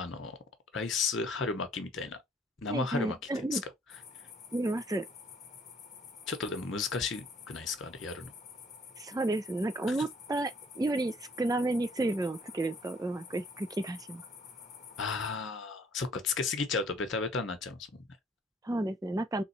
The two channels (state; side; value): normal; both; correlation 0.61